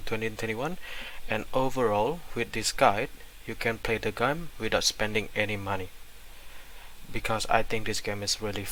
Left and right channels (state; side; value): identical; both; correlation 1.00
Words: 2021, and overall with this guide you can play the game without spending any money, because I think this game is really